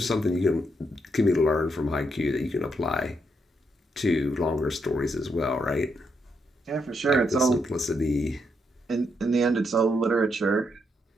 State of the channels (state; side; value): normal; both; correlation 0.79